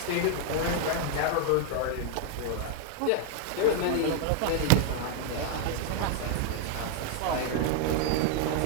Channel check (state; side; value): different; both; correlation 0.00